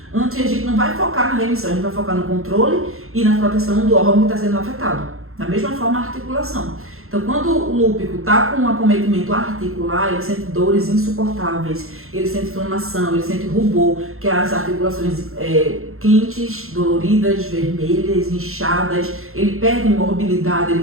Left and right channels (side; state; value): left; late; 0.62 ms